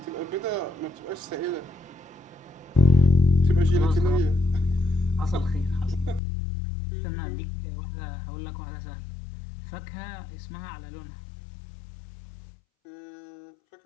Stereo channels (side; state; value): right; drops out; at 6.2 s